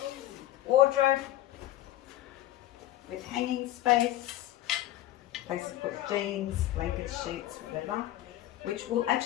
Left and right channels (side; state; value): right; quieter; 14.3 dB